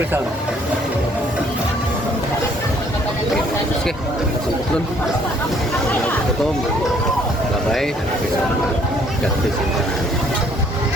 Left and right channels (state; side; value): normal; both; correlation 0.63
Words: Oke, turun. Potong. Labai. Pisang. Jatuh.